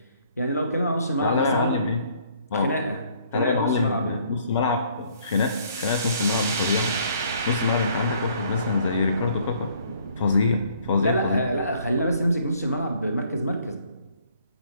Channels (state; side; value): inverted; both; correlation -0.62